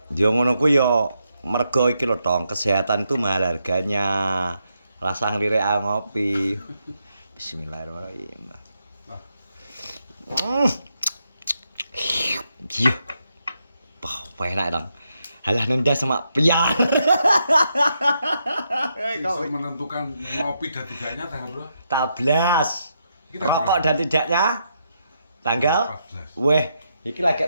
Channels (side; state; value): both; inverted; correlation -0.81